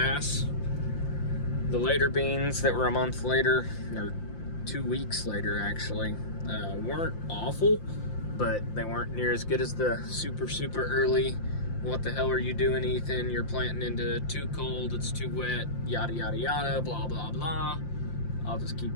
The later beans that were a month later, or 2 weeks later actually, weren't awful, but they weren't near as good as the super early. What the hell are you doing, Ethan? You're planting into too cold, it's too wet, yada yada yada, blah blah blah. I'll just keep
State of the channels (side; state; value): right; late; 5.8 ms